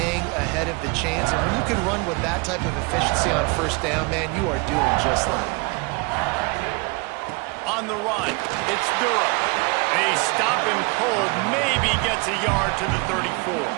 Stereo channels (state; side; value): quieter; left; 28.3 dB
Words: ahead of the chains, and when you can run with that type of efficiency on first down, man, you are doing just that. On the run, it's Durham. They stop him cold, maybe gets a yard to the 34.